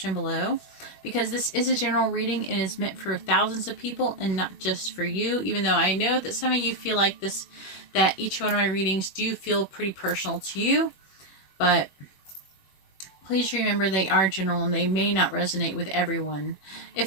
below. Because this is a general reading and is meant for thousands of people and not just for you. Even though I know that some of you feel like this, that each one of my readings do feel pretty personal to you. But please remember they are general and they may not resonate with everyone.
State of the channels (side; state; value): right; late; 21 ms